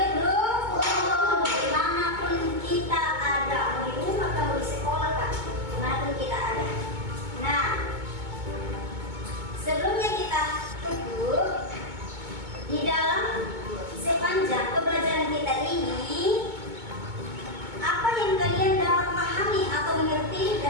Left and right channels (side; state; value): left; late; 2.2 ms